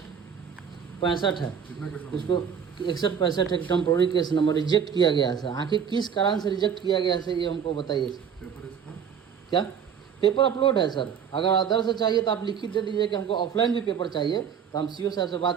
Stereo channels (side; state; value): left; quieter; 7.7 dB